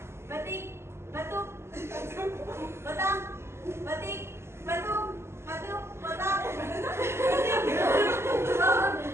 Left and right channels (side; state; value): left; late; 0.12 ms